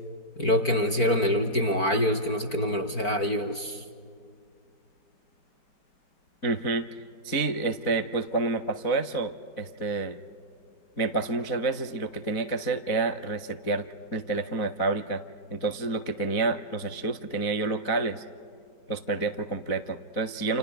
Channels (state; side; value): late; right; 4.5 ms